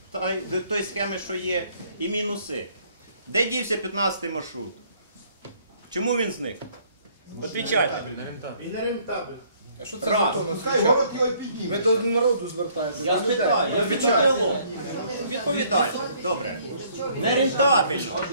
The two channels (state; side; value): inverted; both; correlation -0.62